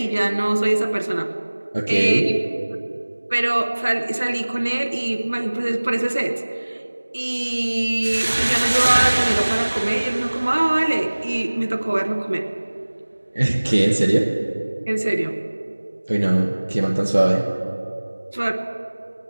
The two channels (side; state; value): both; inverted; correlation -1.00